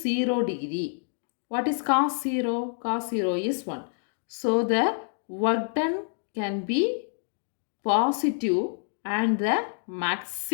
degree, what is cos 0? Cos 0 is 1. So the work done can be positive and the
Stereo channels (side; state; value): right; silent; digital silence